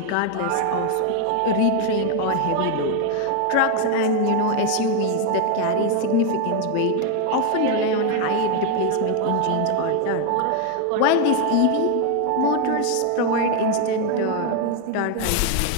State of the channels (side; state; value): both; different; correlation 0.01